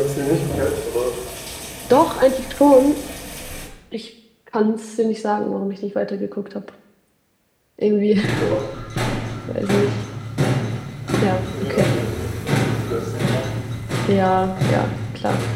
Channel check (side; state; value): both; identical; correlation 1.00